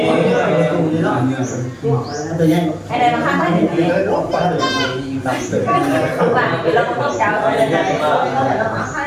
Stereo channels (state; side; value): identical; both; correlation 1.00